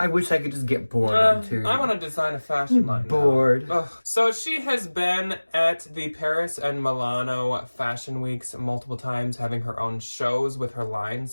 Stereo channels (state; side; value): inverted; both; correlation -1.00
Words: wish I could just get bored of interior. I want to design a fashion line bored. now. Ugh. So she has been at the Paris and Milano Fashion Weeks multiple times, having her own shows with her line,